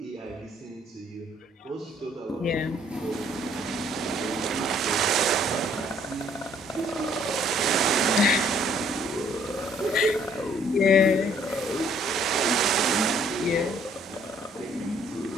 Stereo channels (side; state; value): both; normal; correlation 0.62